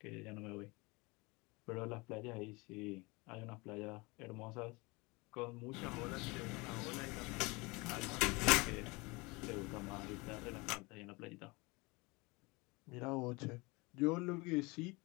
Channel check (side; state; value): right; quieter; 25.5 dB